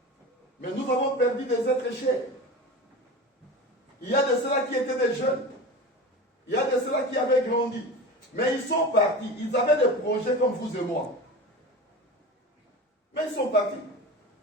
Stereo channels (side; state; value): both; normal; correlation 0.30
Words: Mais nous avons perdu des êtres chers. Il y a de ceux-là qui étaient des jeunes. Il y a de ceux-là qui avaient grandi. Mais ils sont partis. Ils avaient des projets comme vous et moi. Mais ils sont partis.